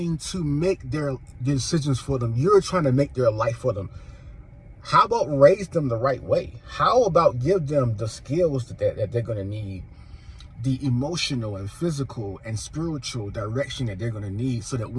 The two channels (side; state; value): both; identical; correlation 1.00